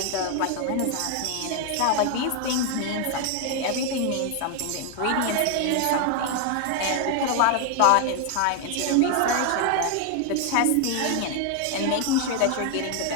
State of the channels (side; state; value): both; different; correlation 0.01